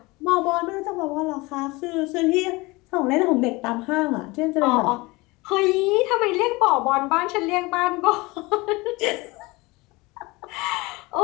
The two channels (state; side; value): quieter; right; 23.4 dB